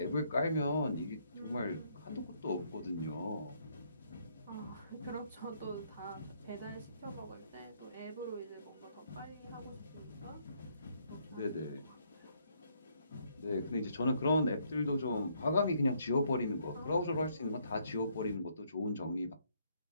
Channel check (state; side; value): inverted; both; correlation -0.70